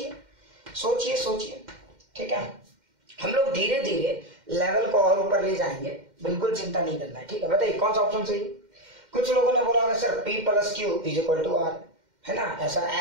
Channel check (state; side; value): late; left; 2.1 ms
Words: सोचिए सोचिए। ठीक है, हम लोग धीरे धीरे लेवल को और ऊपर ले जाएंगे, बिल्कुल चिंता नहीं करना है। ठीक है, बताइए कौन सा ऑप्शन सही है। कुछ लोगों ने बोला होगा sir P plus Q is equal to R, है ना, ऐसा